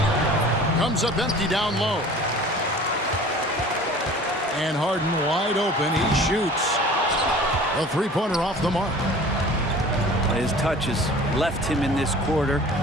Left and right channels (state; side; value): normal; both; correlation 0.44